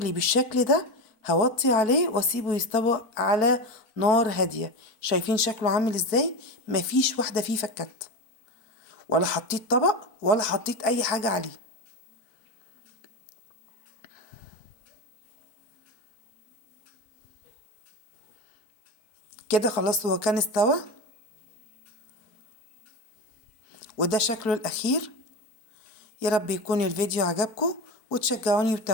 بالشكل ده هوطي عليه واسيبه يستوى على نار هادية. شايفين شكله عامل ازاي؟ مفيش واحدة فيه فكت، ولا حطيت طبق ولا حطيت اي حاجة عليه. كده خلاص هو كان استوى، وده شكله الاخير. يا رب يكون الفيديو عجبكم وتشجعوني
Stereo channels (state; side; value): late; right; 4.5 ms